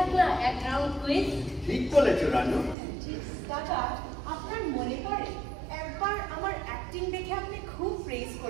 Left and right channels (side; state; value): left; drops out; at 2.8 s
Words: না এক রাউন্ড কুইজ। ঠিক বলেছো রানু। দাদা, আপনার মনে পড়ে একবার আমার অ্যাক্টিং দেখে আপনি খুব প্রেজ